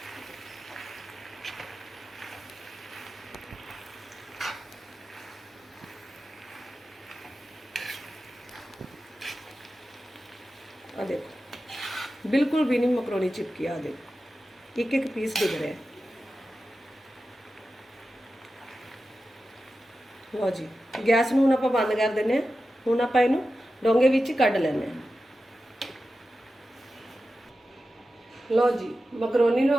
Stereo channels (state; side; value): normal; both; correlation 0.93